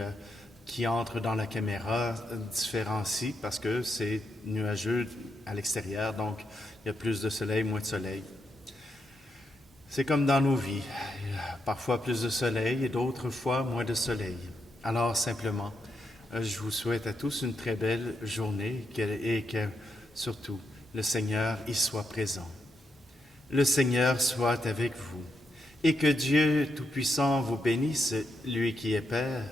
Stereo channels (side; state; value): both; normal; correlation 0.82